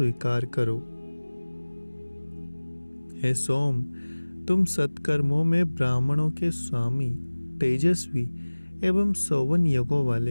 करो। हे सोम, तुम सत्कर्मों में ब्राह्मणों के स्वामी, तेजस्वी एवं 51 यज्ञों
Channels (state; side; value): inverted; both; correlation -1.00